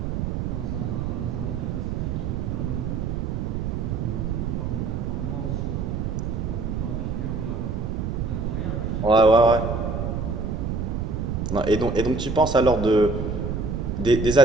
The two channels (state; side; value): noise; right; rumble, 2 dB below the sound